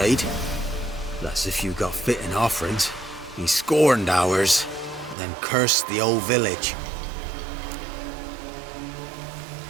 That's if you got fitting offerings. He scorned ours, then cursed the old village.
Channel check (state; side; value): drops out; left; at 5.2 s